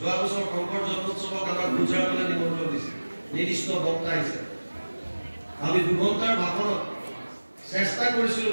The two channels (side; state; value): both; inverted; correlation -1.00